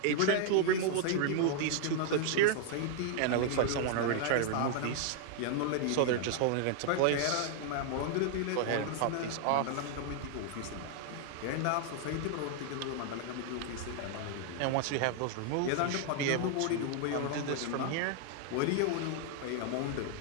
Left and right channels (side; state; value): both; different; correlation 0.00